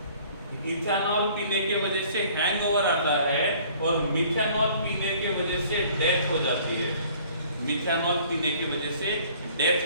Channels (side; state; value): both; inverted; correlation -0.54